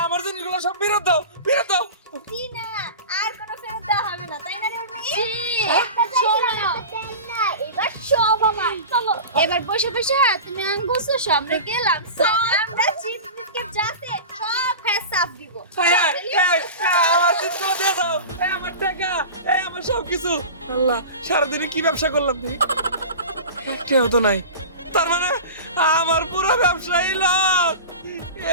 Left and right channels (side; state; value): both; inverted; correlation -0.32